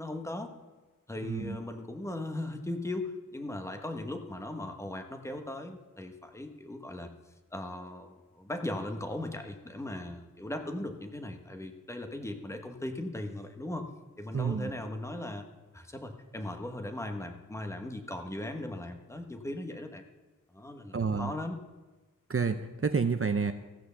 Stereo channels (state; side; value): normal; both; correlation 0.65